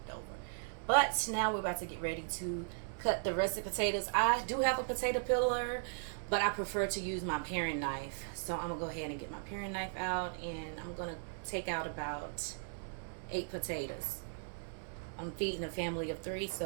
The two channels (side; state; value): left; silent; digital silence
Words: it over. But now we're about to get ready to cut the russet potatoes. I do have a potato peeler, but I prefer to use my paring knife. So I'm gonna go ahead and get my paring knife out, and I'm gonna take out about 8 potatoes. I'm feeding a family of 3,